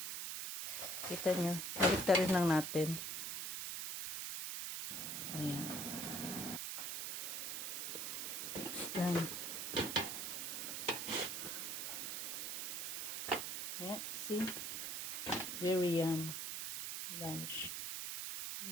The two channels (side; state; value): right; noise; hiss, 3 dB below the sound